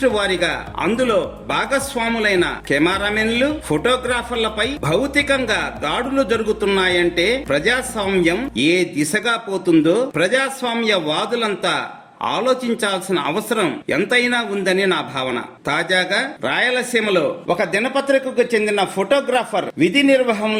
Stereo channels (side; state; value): both; identical; correlation 1.00